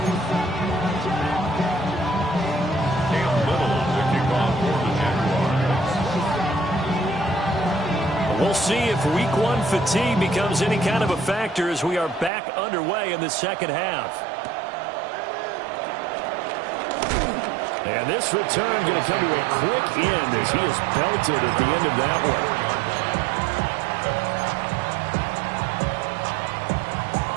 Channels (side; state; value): left; drops out; at 12.3 s